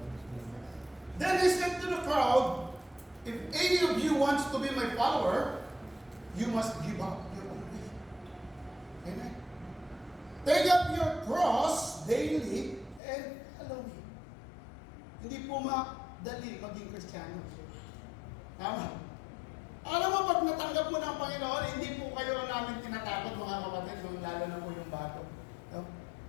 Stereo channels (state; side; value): drops out; right; at 13.0 s